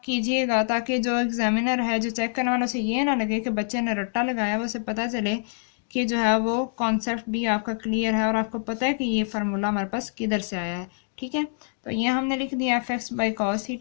कीजिएगा ताकि जो एग्जामिनर है, जो चेक करने वाला, उसे ये ना लगे कि बच्चे ने रट्टा लगाया, उसे पता चले कि जो है वो कॉन्सेप्ट भी आपका क्लियर है और आपको पता है कि ये फार्मूला हमारे पास किधर से आया है, ठीक है। तो ये हमने लिख दिया F X by cos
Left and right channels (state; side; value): silent; right; digital silence